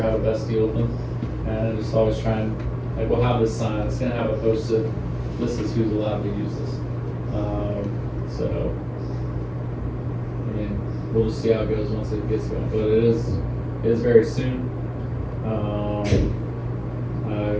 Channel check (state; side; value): identical; both; correlation 1.00